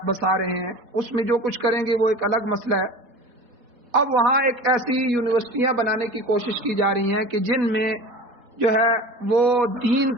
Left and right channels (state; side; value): late; left; 4.1 ms